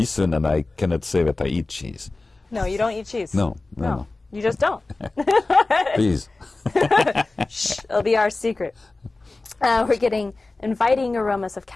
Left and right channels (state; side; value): quieter; right; 3.3 dB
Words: and I cannot say that I eat cheese. No, you don't eat cheese. No. You just don't. Please. Shh, it'll be our secret. We're getting inviting aromas of